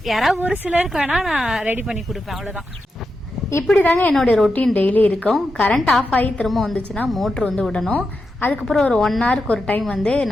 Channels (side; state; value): both; normal; correlation 0.88